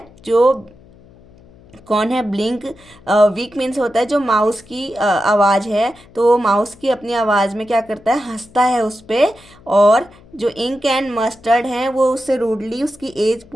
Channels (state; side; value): noise; left; hum, 25 dB below the sound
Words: जो कौन है ब्लिंक, वीक मीन्स होता है जो माउस की आवाज़ है, तो वो माउस की अपनी आवाज़ में क्या करता है, हंसता है उस पे। और जो इंक एंड मस्टर्ड हैं वो उससे रूडली उसकी एज